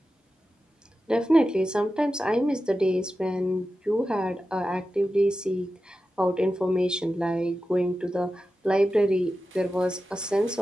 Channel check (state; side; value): normal; both; correlation 0.93